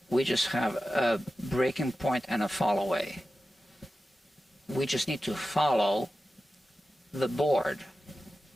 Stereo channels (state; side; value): normal; both; correlation 0.93